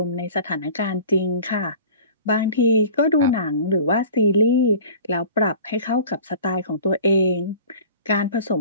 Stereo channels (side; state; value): both; inverted; correlation -0.43